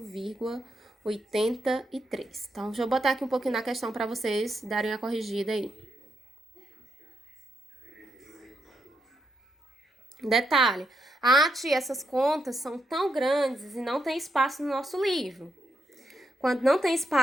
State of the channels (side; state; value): both; normal; correlation 0.81